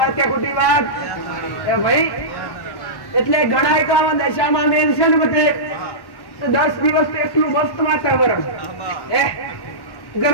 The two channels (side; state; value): right; late; 1.1 ms